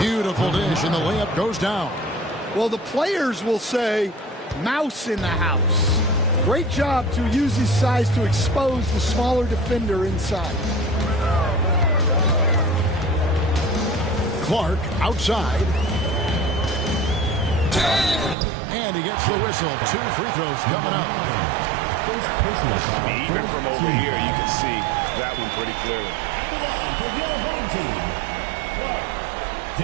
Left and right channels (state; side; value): drops out; left; at 18.4 s